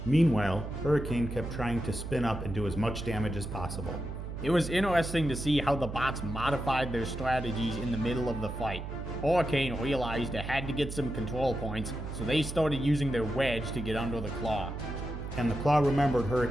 Meanwhile, Hurricane kept trying to spin up and do as much damage as possible. It was interesting to see how the bots modified their strategies in the middle of the fight. Hurricane realized it had to get some control points, so they started using their wedge to get under the claw. And the claw remembered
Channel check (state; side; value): noise; right; hum, 7 dB below the sound